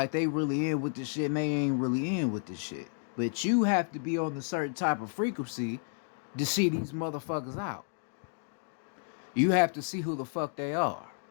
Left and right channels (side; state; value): right; silent; 57 dB below the other